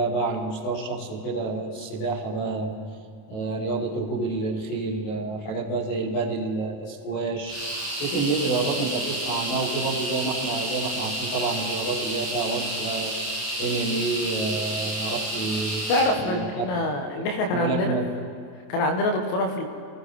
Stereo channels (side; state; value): right; late; 28 ms